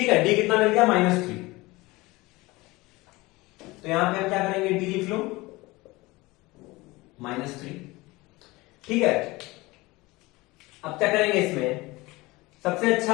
है, डी कितना मिल गया, -3। तो यहां पे हम क्या करेंगे, डी लिख लो -3। ठीक है, अब क्या करेंगे इसमें, सबसे अच्छा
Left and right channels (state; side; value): quieter; right; 21.6 dB